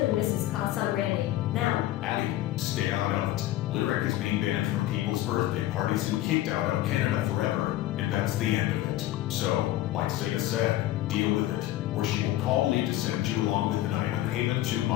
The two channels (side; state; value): right; quieter; 14.8 dB